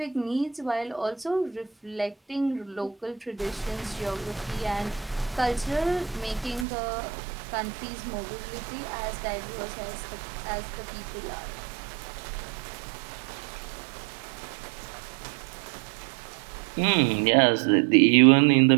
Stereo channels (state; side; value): drops out; left; at 6.7 s